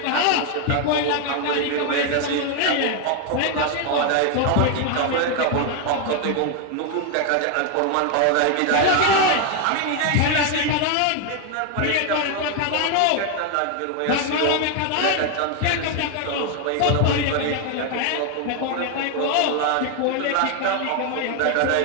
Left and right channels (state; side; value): different; both; correlation 0.01